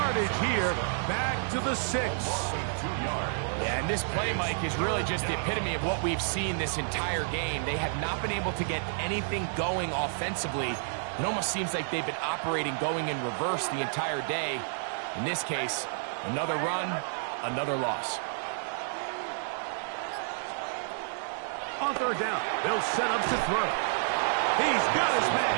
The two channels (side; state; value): left; silent; digital silence